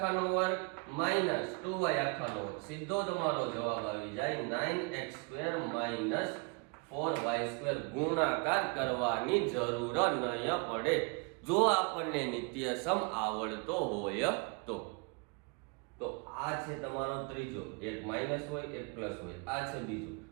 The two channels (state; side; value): quieter; left; 32.7 dB